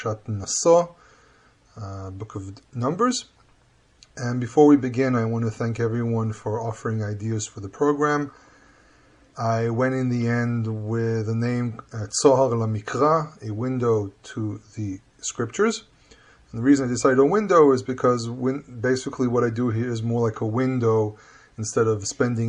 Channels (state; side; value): identical; both; correlation 1.00